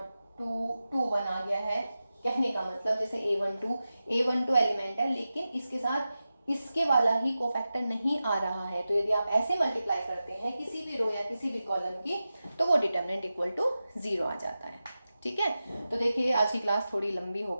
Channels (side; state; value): both; inverted; correlation -0.93